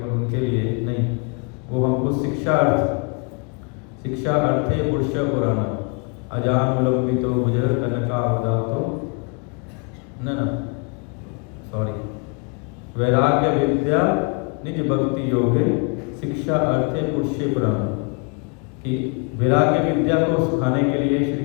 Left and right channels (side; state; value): right; quieter; 34.3 dB